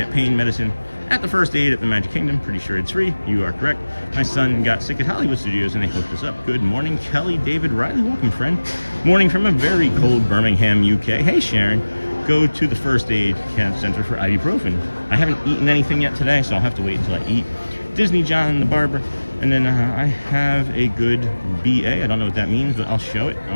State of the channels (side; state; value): both; inverted; correlation -1.00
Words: pain medicine at the first aid at the Magic Kingdom. Pretty sure it's free. You are correct. My son got sick at Hollywood Studios and they hooked us up. Good morning, Kelly, David, Riley. Welcome, friend. Morning from a very cold Birmingham, UK. Hey, Sharon. Go to the first aid center for ibuprofen. I haven't eaten anything yet today, so I'll have to wait until I eat. Disney John the Barber. And then I have a good BA. I don't know what that means, but I'll show it. I